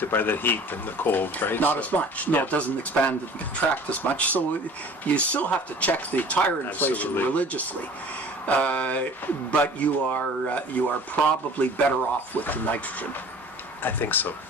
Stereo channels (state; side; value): normal; both; correlation 0.46